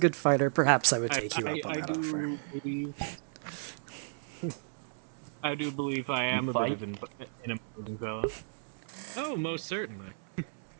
fighter, perhaps I would take you up on that offer. I do believe I am a bit of an imposing fella. Oh, most certainly.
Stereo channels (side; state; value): left; silent; digital silence